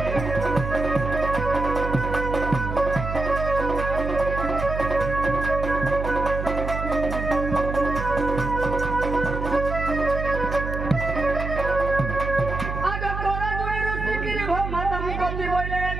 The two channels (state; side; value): noise; right; hum, 5 dB below the sound